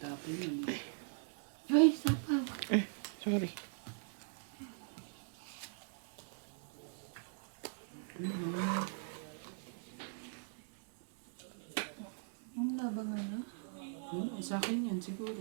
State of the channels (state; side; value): silent; left; digital silence